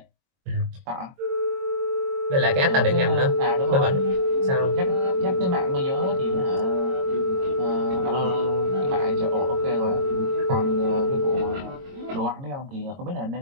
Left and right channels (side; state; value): left; late; 22 ms